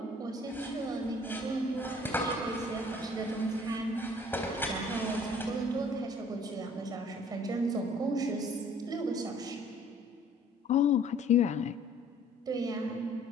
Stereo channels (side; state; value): both; normal; correlation 0.55